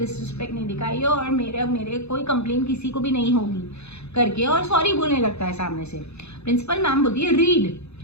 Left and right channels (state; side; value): late; right; 0.80 ms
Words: नहीं दिखाई है और मेरे कोई कंप्लेन किसी को भी नहीं होगी करके, और सॉरी बोलने लगता है सामने से। प्रिंसिपल मैम बोलती है रीड।